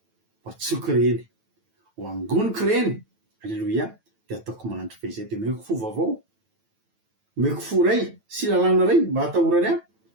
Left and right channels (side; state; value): left; late; 9.1 ms